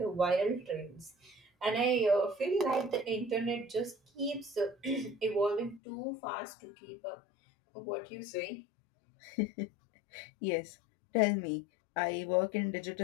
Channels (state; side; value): drops out; right; at 5.8 s